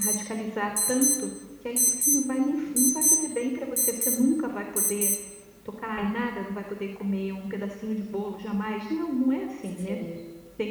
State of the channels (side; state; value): both; identical; correlation 1.00